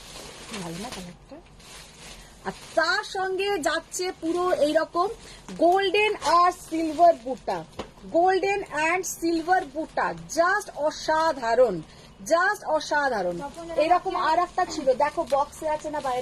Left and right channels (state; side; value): identical; both; correlation 1.00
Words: ভালো না কালারটা? আর তার সঙ্গে যাচ্ছে পুরো এইরকম golden R silver buta, golden and silver বুটা, জাস্ট অসাধারণ, জাস্ট অসাধারণ। এরকম আর একটা ছিল, দেখো বক্সে আছে না